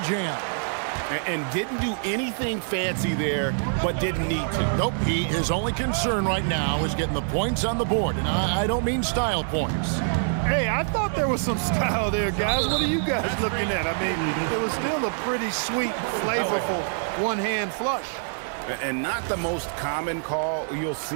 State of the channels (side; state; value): left; silent; digital silence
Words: jam. And didn't do anything fancy there, but didn't need to. Nope, his only concern right now is getting the points on the board, and I don't mean style points. Hey, I thought there was some style there, guys. What are you guys looking at? I mean, it was still a pretty sweet, flavorful one-hand flush. And not the most common call you'll